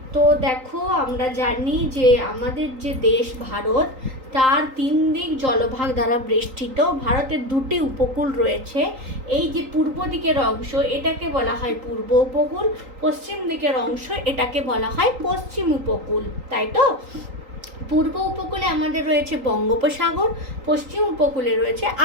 তো দেখো, আমরা জানি যে আমাদের যে দেশ ভারত, তার 3 দিক জলভাগ দ্বারা বেষ্টিত। ভারতের 2টি উপকূল রয়েছে। এই যে পূর্ব দিকের অংশ, এটাকে বলা হয় পূর্ব উপকূল, পশ্চিম দিকের অংশ এটাকে বলা হয় পশ্চিম উপকূল, তাই তো? পূর্ব উপকূলে আমাদের রয়েছে বঙ্গোপসাগর, পশ্চিম উপকূলে রয়েছে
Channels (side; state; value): left; late; 3.8 ms